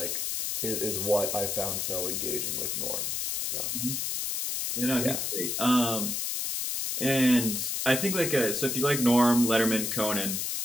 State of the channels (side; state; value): left; noise; hiss, 1 dB below the sound